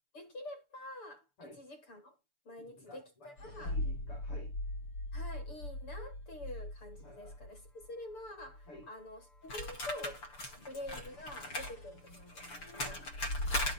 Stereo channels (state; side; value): late; right; 6.9 ms